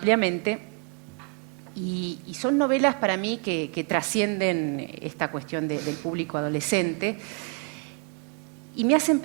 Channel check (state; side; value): quieter; left; 36.9 dB